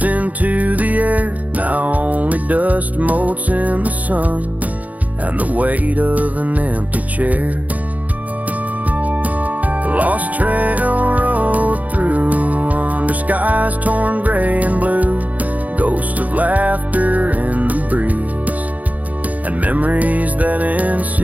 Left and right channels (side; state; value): left; late; 0.075 ms